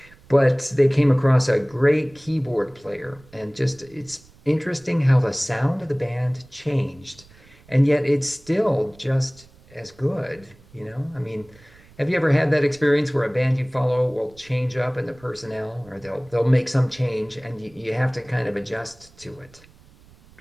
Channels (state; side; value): noise; right; rumble, 26 dB below the sound